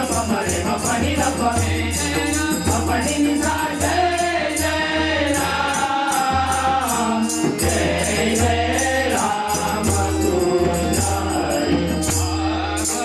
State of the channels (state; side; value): identical; both; correlation 1.00